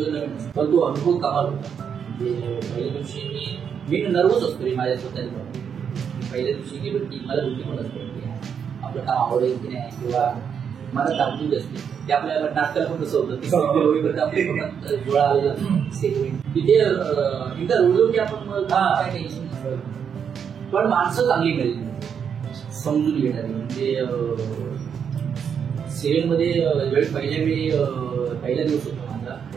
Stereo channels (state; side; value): quieter; left; 7.4 dB